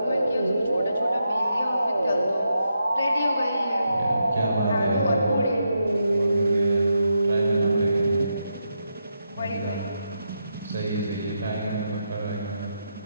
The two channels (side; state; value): both; inverted; correlation -0.83